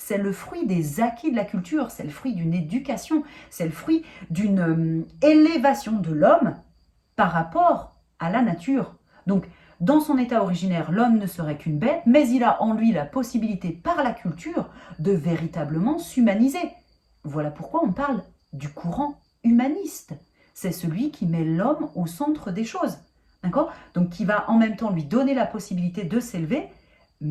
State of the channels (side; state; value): both; identical; correlation 1.00